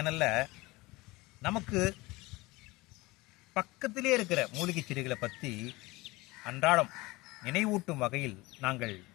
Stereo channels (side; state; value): right; quieter; 21.8 dB